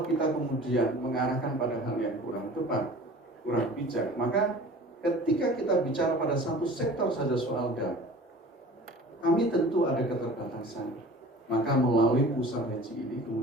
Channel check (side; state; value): both; normal; correlation 0.43